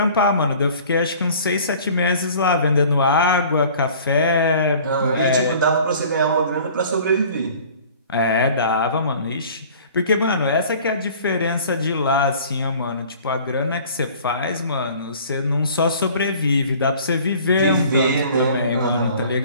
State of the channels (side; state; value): both; inverted; correlation -0.48